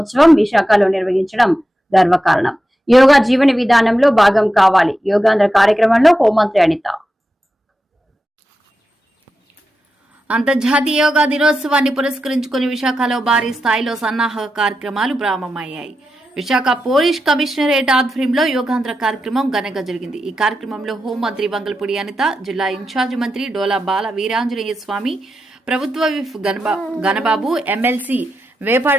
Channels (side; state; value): both; normal; correlation 0.89